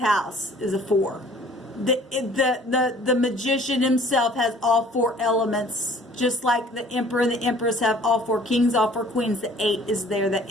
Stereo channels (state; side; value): normal; both; correlation 0.53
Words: is a 4. The magician himself has all 4 elements, just like the Emperor and the Empress have all 4 kings, all 4 queens. The 8 is there. That